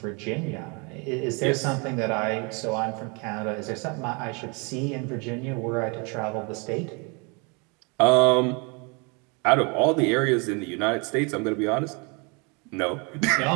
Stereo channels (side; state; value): left; quieter; 32.0 dB